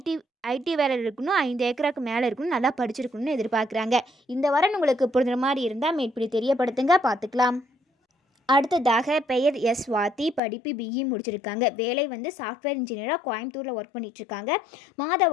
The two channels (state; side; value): drops out; right; at 10.4 s